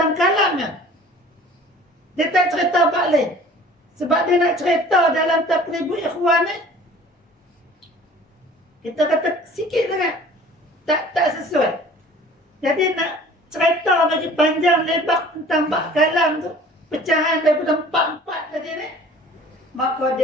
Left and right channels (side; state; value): both; normal; correlation 0.48